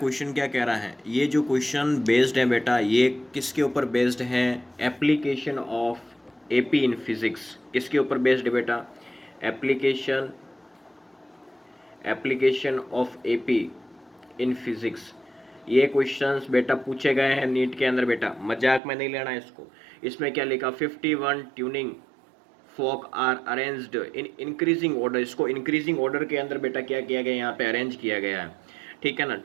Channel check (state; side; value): drops out; left; at 18.8 s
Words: क्या कह रहा है? ये जो क्वेश्चन बेस्ड है बेटा, ये किसके ऊपर बेस्ड है? Application of AP in physics. किसके ऊपर बेस्ड है बेटा? Application of AP in physics. ये क्वेश्चंस बेटा पूछे गए हैं नीट के अंदर बेटा, मजाक में नहीं लेना है इसको। इसमें क्या लिखा? 51 tuning fork are arranged in increasing order. इसको इंक्रीजिंग ऑर्डर के अंदर बेटा क्या किया गया? यहाँ पे अरेंज किया गया है, ठीक है ना।